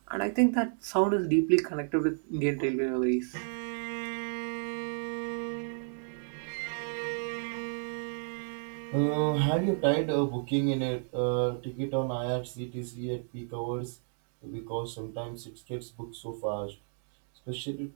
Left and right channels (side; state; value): left; silent; digital silence